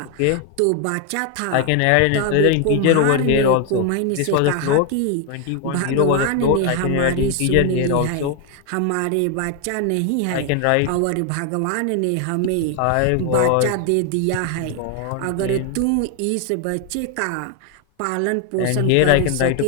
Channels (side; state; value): both; different; correlation 0.01